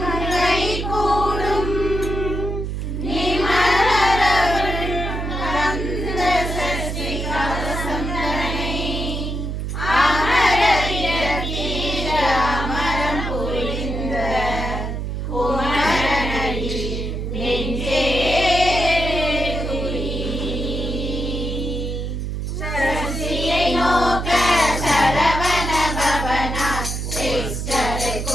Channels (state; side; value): noise; right; hum, 3 dB below the sound